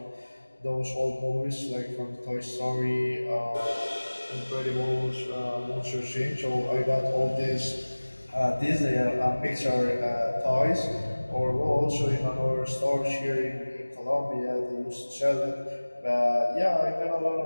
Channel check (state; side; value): inverted; both; correlation -1.00